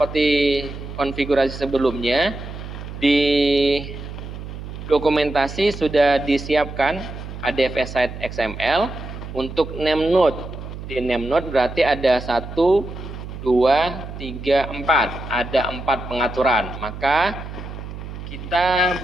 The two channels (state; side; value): noise; right; hum, 10 dB below the sound